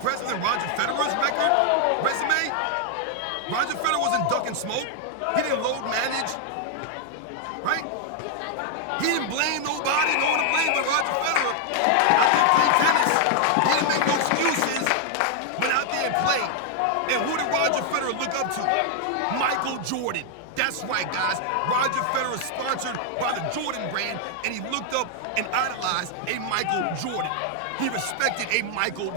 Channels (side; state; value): both; different; correlation 0.00